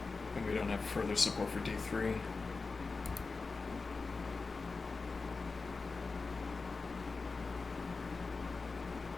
And we don't have further support for d3.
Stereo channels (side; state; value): right; quieter; 4.1 dB